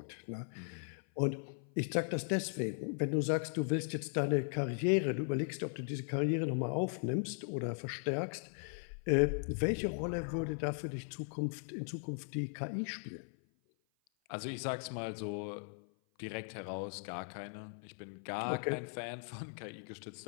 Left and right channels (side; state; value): right; silent; 52 dB below the other